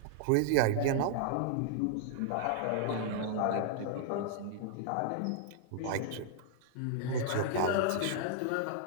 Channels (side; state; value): both; different; correlation -0.01